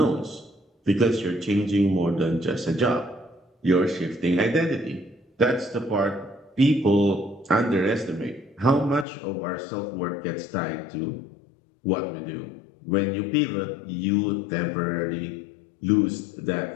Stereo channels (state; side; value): drops out; right; at 9.1 s